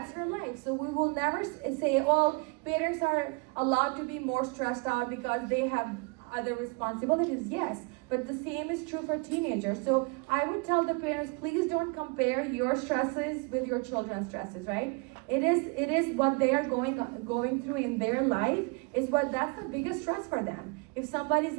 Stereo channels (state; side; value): quieter; left; 31.2 dB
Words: her life. So we will never say, well, parents are allowed to be more stressed out because they have other responsibilities. Yes, but the same is true for teenagers. So I would tell the parents, please don't compare your stresses with your children's stresses, right? It is what they are going through in their life that's the biggest stress for them. If somebody's